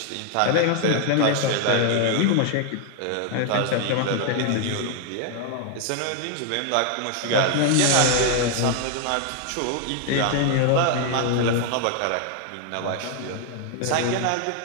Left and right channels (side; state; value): both; different; correlation 0.00